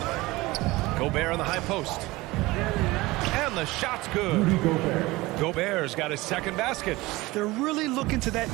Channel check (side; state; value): left; quieter; 20.5 dB